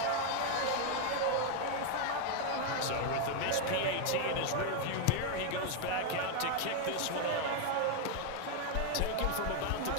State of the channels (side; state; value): both; different; correlation 0.01